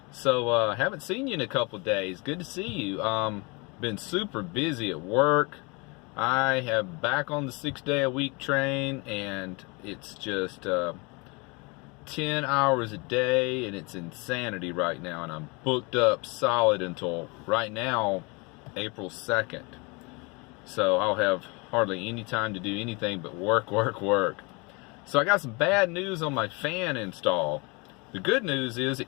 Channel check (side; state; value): right; quieter; 28.8 dB